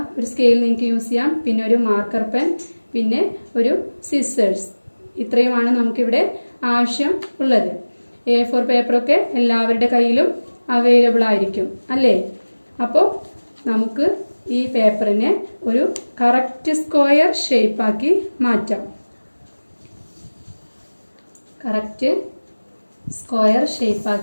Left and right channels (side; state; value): both; inverted; correlation -1.00